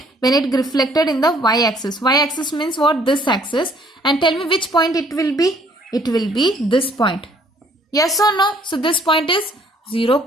when it reflected in the y-axis. Y-axis means what? This axis. And tell me which point it will be. It will be this point. Yes or no? So this point is 0,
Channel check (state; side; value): normal; both; correlation 0.61